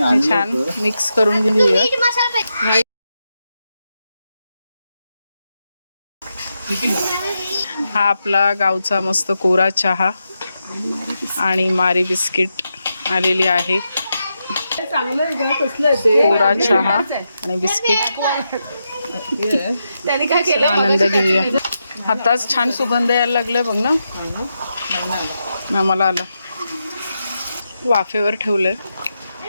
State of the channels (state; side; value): inverted; both; correlation -0.86